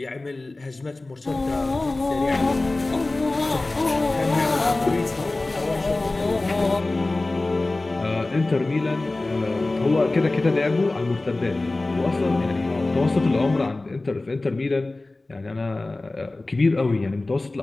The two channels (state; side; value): quieter; right; 3.0 dB